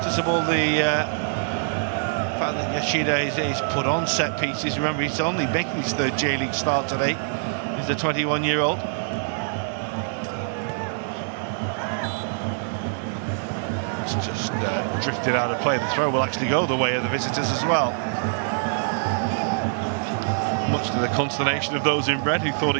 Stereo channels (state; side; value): silent; left; digital silence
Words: the fact that Yashida is put on set pieces. Remember, he's only making his 3rd J-League start today. He's the 21-year-old. It's just drifted out of play. The throw will actually go the way of the visitors as well. Much to the consternation of those in red who thought